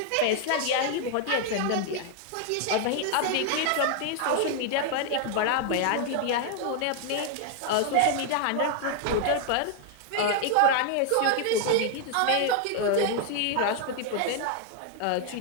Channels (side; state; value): both; different; correlation 0.00